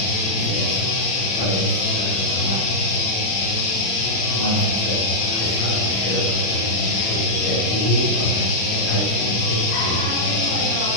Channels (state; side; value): late; right; 36 ms